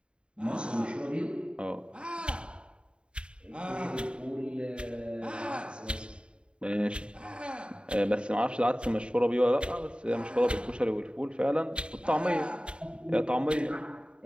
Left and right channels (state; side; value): late; left; 0.054 ms